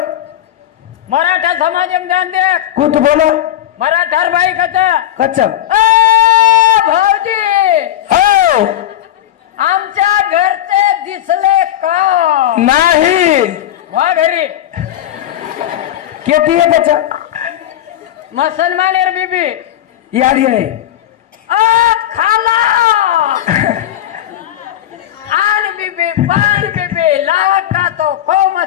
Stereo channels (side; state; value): right; quieter; 12.2 dB